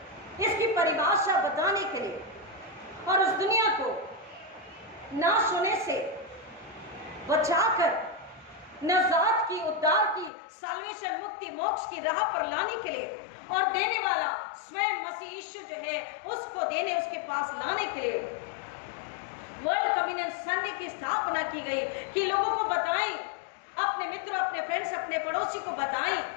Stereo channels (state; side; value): drops out; right; at 10.3 s